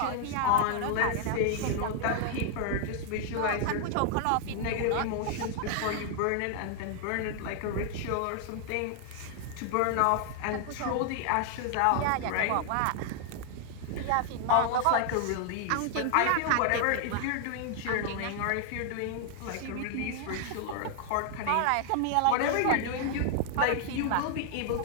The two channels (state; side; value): different; both; correlation 0.00